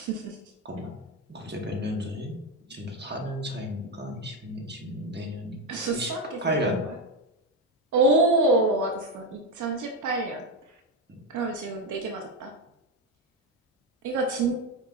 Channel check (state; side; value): normal; both; correlation 0.10